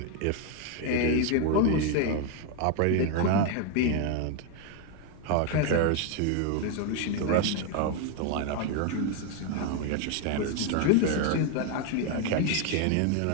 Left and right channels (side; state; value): both; different; correlation 0.01